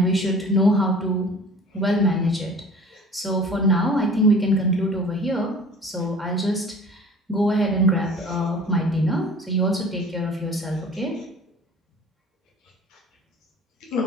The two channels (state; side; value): normal; both; correlation 0.45